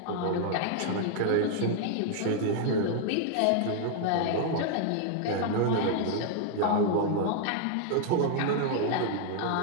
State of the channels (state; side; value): different; both; correlation 0.00